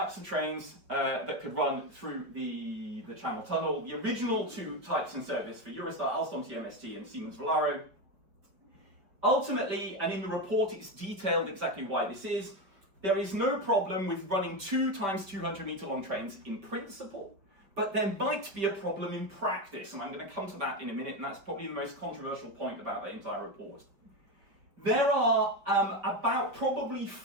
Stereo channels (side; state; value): left; late; 5.2 ms